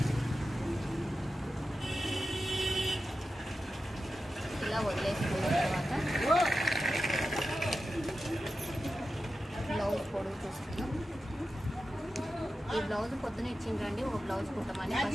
ఇలా వదిలేసుకున్న తర్వాత బ్లౌజ్ పొడుగు చూస్తున్నాం. ఈ బ్లౌజ్ పొద్దున ఇచ్చిండ్రండి, ఒక బ్లౌజ్ కుట్టమని.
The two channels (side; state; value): both; normal; correlation 0.92